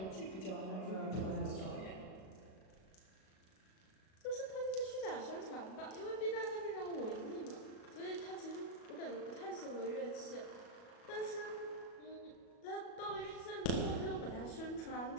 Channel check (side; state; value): right; late; 37 ms